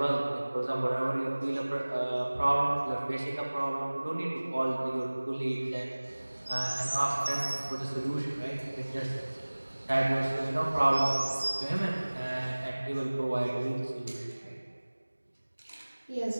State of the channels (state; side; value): inverted; both; correlation -1.00